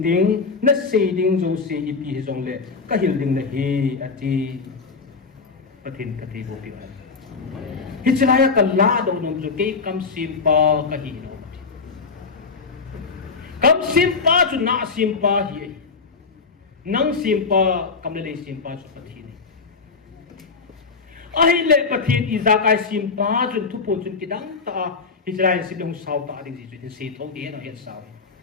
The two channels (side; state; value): right; quieter; 4.7 dB